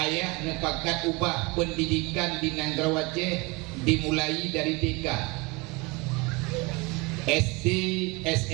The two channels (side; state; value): left; quieter; 26.5 dB